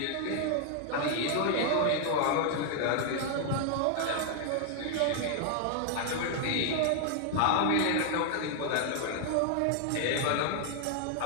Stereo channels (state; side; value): different; both; correlation 0.00